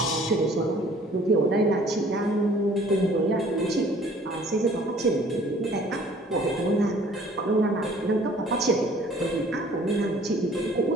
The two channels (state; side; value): normal; both; correlation 0.54